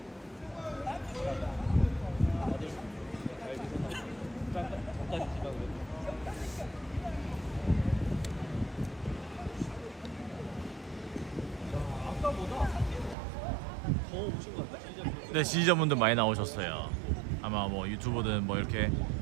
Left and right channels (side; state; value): left; drops out; at 13.2 s